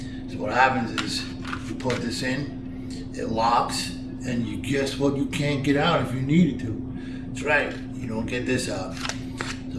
So what happens is you put this in, it locks, and you guess what, you can't get out if you needed to. That's right, you don't get this out.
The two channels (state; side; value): identical; both; correlation 1.00